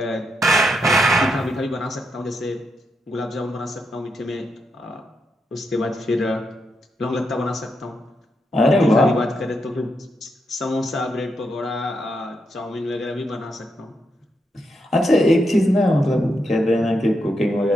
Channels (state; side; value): normal; both; correlation 0.82